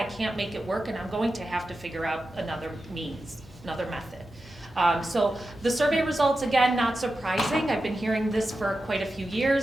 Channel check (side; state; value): both; normal; correlation 0.91